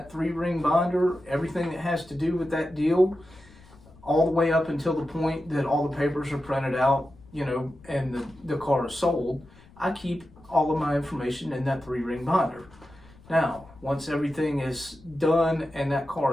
3-ring binder, everything that has to do with that deal, all the way up until the point that all the papers are printed out, you know, and the car is sold. I keep all of my information in that 3-ring binder. Now, once everything is done and that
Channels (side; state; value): left; noise; rumble, 24 dB below the sound